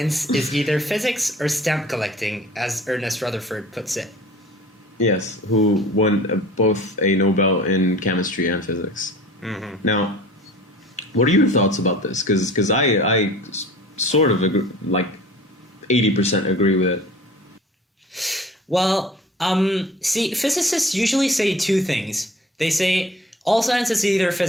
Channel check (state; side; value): normal; both; correlation 0.45